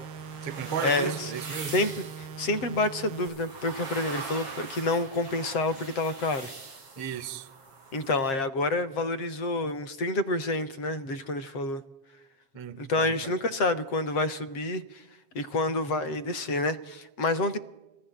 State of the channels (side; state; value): right; late; 7.4 ms